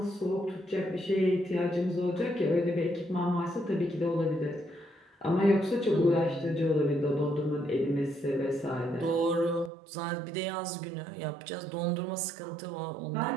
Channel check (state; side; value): drops out; left; at 9.7 s